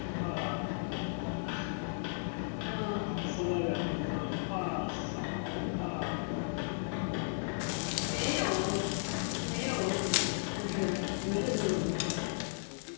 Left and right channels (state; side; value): silent; right; digital silence